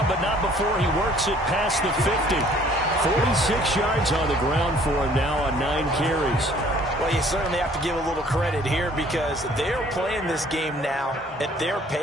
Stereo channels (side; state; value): both; normal; correlation 0.57